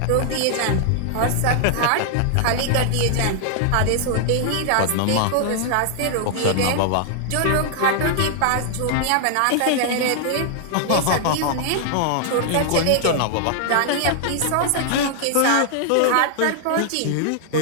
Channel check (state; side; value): different; both; correlation -0.01